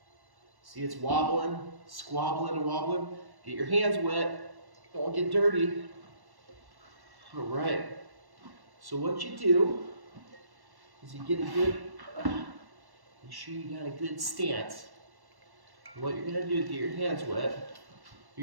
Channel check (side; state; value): left; late; 1.1 ms